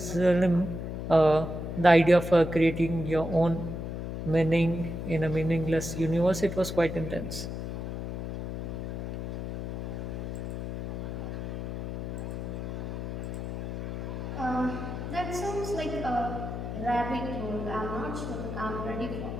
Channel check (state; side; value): noise; left; hum, 5 dB below the sound